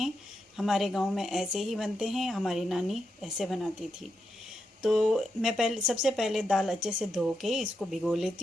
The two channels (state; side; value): normal; both; correlation 0.84